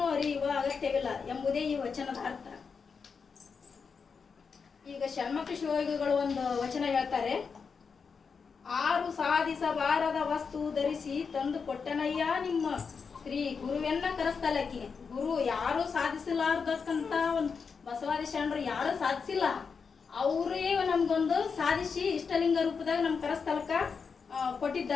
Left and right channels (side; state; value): right; quieter; 5.6 dB